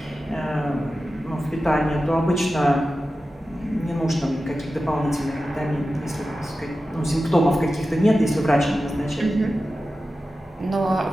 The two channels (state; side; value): normal; both; correlation 0.93